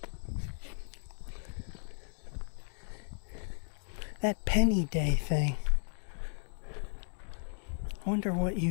That penny day thing. I wonder what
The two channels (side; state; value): right; silent; 55 dB below the other